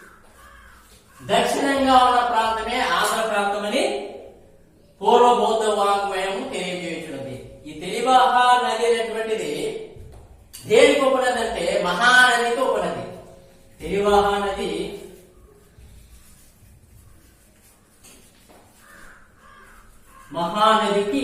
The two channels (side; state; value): both; identical; correlation 1.00